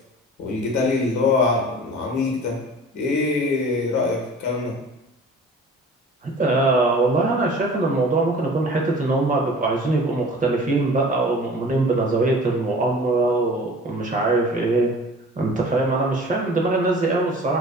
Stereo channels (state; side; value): normal; both; correlation 0.44